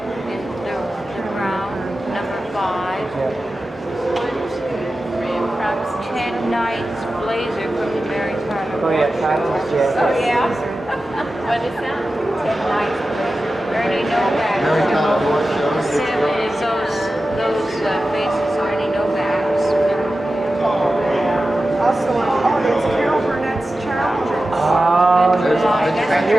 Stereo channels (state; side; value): normal; both; correlation 0.94